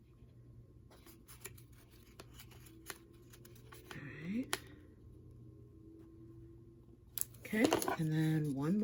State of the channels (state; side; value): identical; both; correlation 1.00